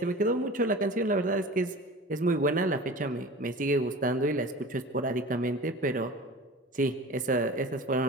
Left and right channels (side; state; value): both; normal; correlation 0.37